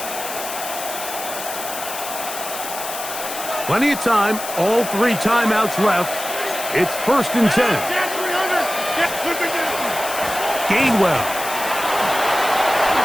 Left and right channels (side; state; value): left; noise; hiss, 8 dB below the sound